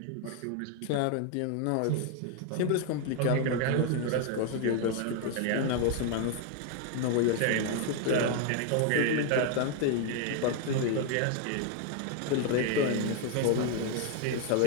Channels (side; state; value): both; different; correlation 0.00